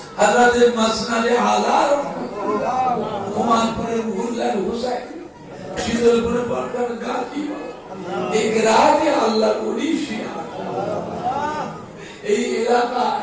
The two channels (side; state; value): both; identical; correlation 1.00